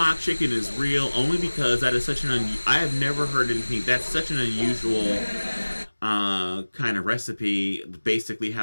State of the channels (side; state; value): both; inverted; correlation -1.00